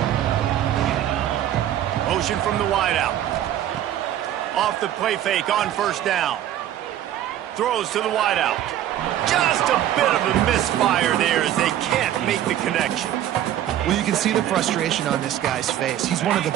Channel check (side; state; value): left; quieter; 11.8 dB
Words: Motion from the wideout. Off the play fake on 1st down. Throws to the wideout. Just a bit of a misfire there as they can't make the connection. Well, you can see the frustration on this guy's face. He's one of the